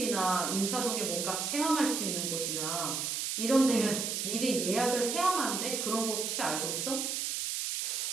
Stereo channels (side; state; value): right; noise; hiss, 1 dB below the sound